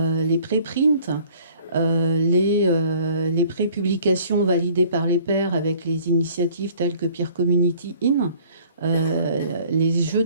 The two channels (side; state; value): both; inverted; correlation -0.54